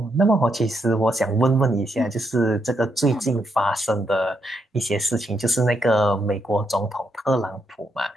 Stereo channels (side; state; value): both; normal; correlation 0.79